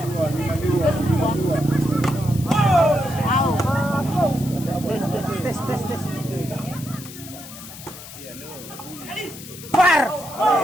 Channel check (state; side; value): noise; left; hiss, 14 dB below the sound